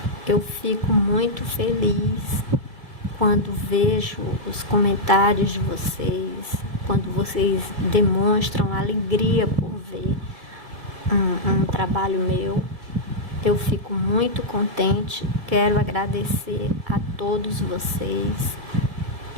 eu fico muito feliz quando vejo os comentários de vocês, quando vocês demonstram alegria por ver um trabalho meu. Eu fico muito contente. Quero agradecer a todos vocês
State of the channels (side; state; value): left; late; 2.3 ms